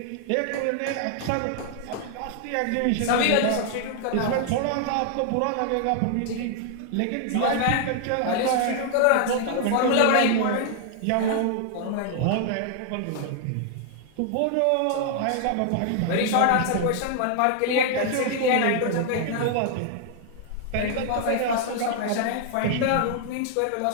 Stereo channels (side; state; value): both; different; correlation 0.00